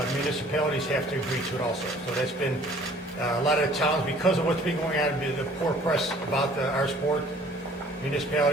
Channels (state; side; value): normal; both; correlation 0.54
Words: municipalities have to agree to it also. So that's been a lot of towns, because of what's been going on, the poor press about our sport,